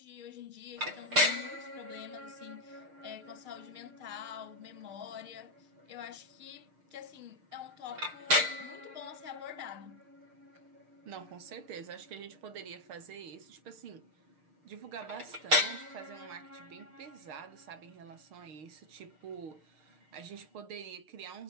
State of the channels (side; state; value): left; late; 6.5 ms